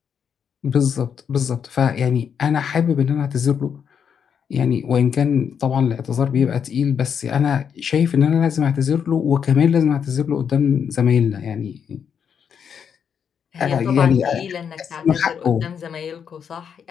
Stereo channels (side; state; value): right; quieter; 7.4 dB